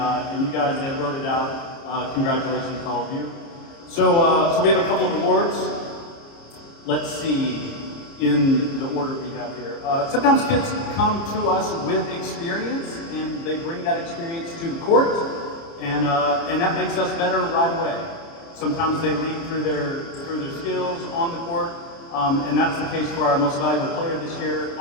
you guys that wrote it out, congratulations to all of you. So we have a couple of awards. Let's see in the order we have here. Sometimes kids come to us with experience, and they bring that experience to the court, and that makes us better right away. Sometimes they lead through their skills on the court. And that's the case for our most valuable player this year,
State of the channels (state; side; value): late; right; 30 ms